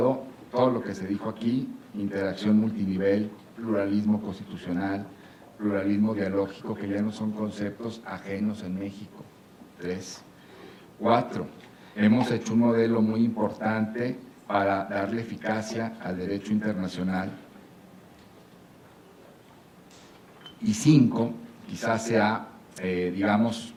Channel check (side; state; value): both; identical; correlation 1.00